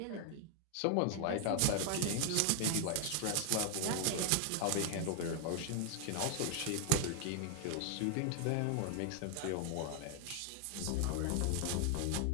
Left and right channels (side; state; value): both; different; correlation 0.00